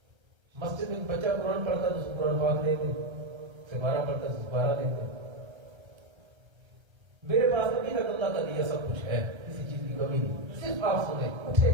مسجد میں بچہ قرآن پڑھتا ہے تو اس کو قرآن پاک دے دیں، سپارہ پڑھتا ہے تو سپارہ دے دیں۔ میرے پاس ابھی تک اللہ کا دیا سب کچھ ہے، کسی چیز کی کمی نہیں، صرف آپ سنیں، اٹھیں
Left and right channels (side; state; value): left; late; 1.3 ms